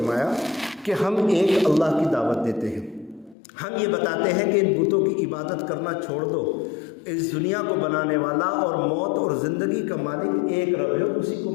کہ ہم ایک اللہ کی دعوت دیتے ہیں، ہم یہ بتاتے ہیں کہ ان بتوں کی عبادت کرنا چھوڑ دو، اس دنیا کو بنانے والا اور موت اور زندگی کا مالک ایک رب ہے، اسی کو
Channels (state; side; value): drops out; right; at 3.4 s